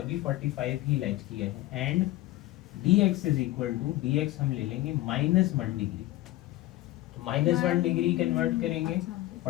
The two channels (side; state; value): right; quieter; 16.8 dB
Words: भी 45 ही लेट किया है। And dx is equal to, dx हम ले लेंगे -1 डिग्री। तो -1 डिग्री कन्वर्ट करेंगे,